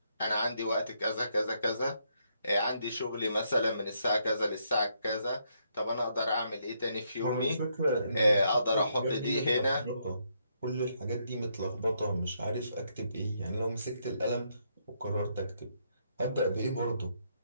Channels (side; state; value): both; inverted; correlation -0.75